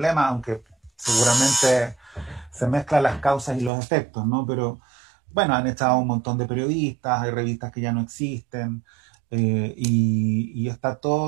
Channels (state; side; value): drops out; left; at 3.7 s